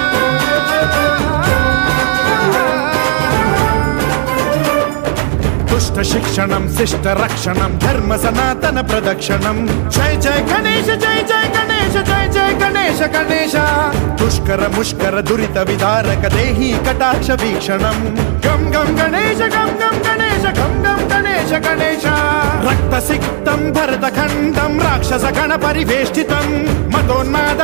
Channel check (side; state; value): left; silent; 60 dB below the other